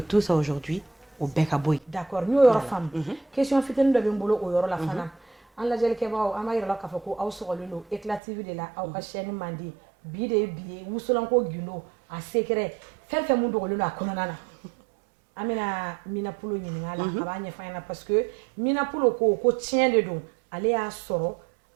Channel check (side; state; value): left; drops out; at 8.2 s